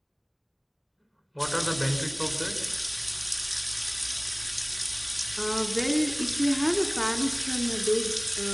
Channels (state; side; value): identical; both; correlation 1.00